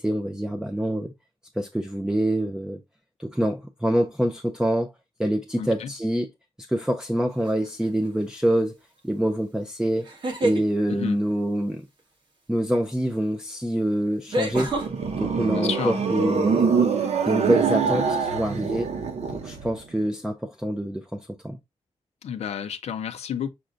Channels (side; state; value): both; normal; correlation 0.80